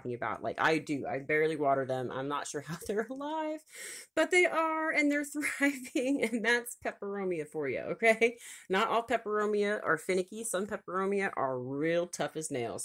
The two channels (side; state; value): both; identical; correlation 1.00